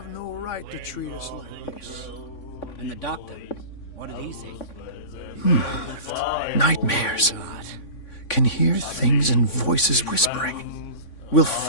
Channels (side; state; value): right; late; 3.5 ms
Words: no right to treat us like this. And the doctor, what did he say? Nightmares. Can hear things and voices whispering. Will